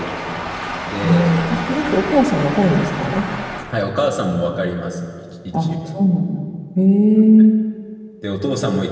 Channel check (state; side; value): identical; both; correlation 1.00